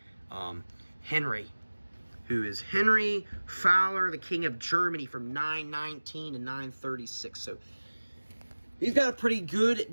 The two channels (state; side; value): inverted; both; correlation -1.00